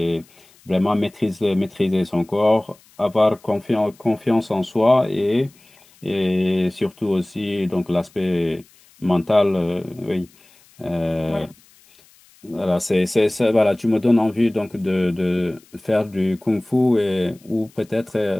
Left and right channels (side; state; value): left; noise; hiss, 29 dB below the sound